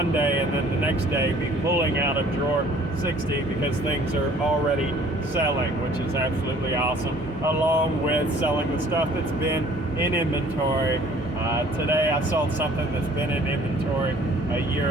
day, and then the next day be pulling out of drawer 60 because things are already selling, which is absolutely awesome, along with selling the stuff that's been in inventory. Today I sold something that's been in inventory a year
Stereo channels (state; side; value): normal; both; correlation 0.54